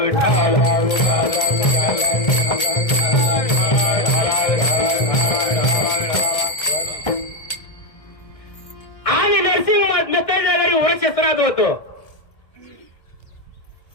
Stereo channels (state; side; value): late; right; 1.7 ms